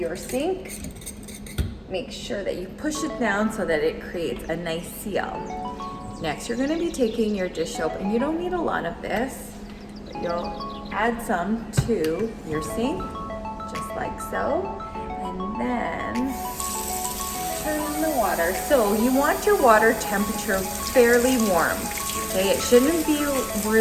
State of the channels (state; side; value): identical; both; correlation 1.00